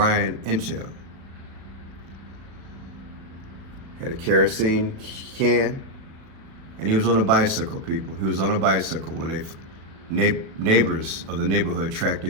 Intel. Had a kerosene can, and he was on a bicycle, people. He was on a bicycle when neighbors of the neighborhood tracked the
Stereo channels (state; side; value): late; left; 36 ms